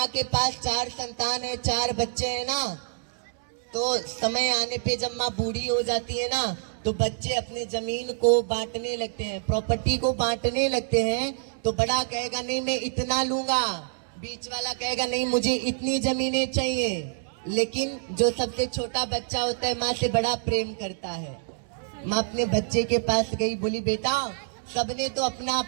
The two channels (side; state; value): left; silent; 60 dB below the other